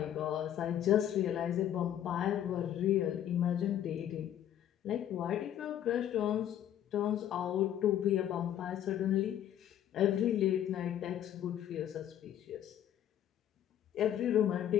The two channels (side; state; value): right; quieter; 10.8 dB